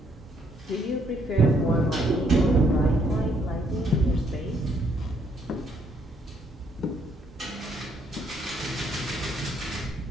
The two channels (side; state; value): both; normal; correlation 0.69